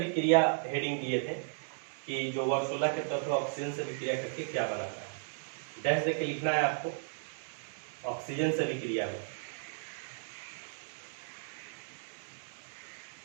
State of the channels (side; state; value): left; silent; digital silence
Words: हेडिंग दिए थे कि जो वर्ग 16 के तत्व ऑक्सीजन से अभिक्रिया करके क्या बनाता है। डैश देके लिखना है आपको, ऑक्सीजन से अभिक्रिया में।